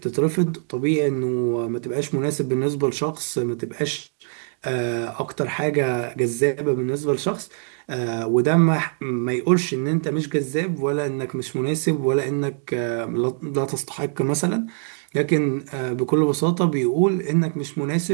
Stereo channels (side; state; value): left; silent; 59 dB below the other